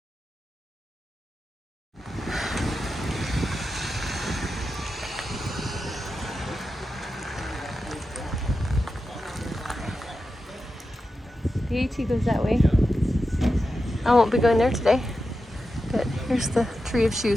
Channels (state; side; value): normal; both; correlation 0.90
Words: The AT goes that way. I won't be going there today, but here's the tree of